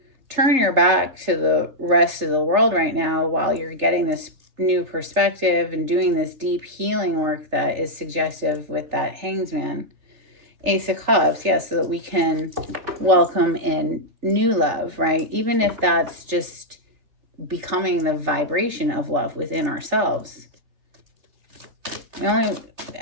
turn your back to the rest of the world right now while you're getting this new perspective and doing this deep healing work that is suggestive with that Hanged Man. Ace of Cups, yes, so that we can welcome in new love, right? Even if that's just becoming the vibration of love within ourselves.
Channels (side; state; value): left; late; 3.4 ms